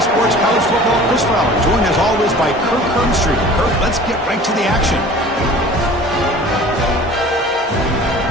Sports College Football, Chris Fowler, joined as always by Kirk Hermstreet. Kirk, let's get right to the action.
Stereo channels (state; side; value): normal; both; correlation 0.44